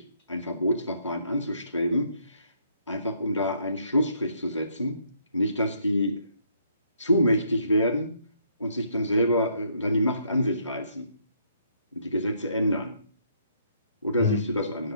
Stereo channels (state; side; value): inverted; both; correlation -0.69